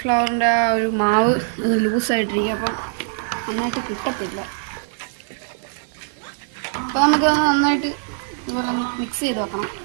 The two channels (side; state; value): left; silent; 64 dB below the other